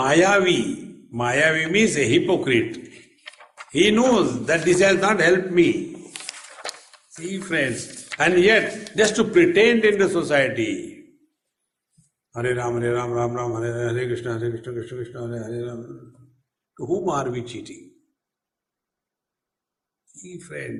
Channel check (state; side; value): identical; both; correlation 1.00